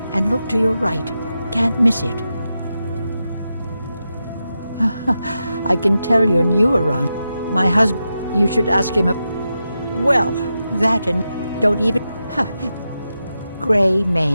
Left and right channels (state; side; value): inverted; both; correlation -0.89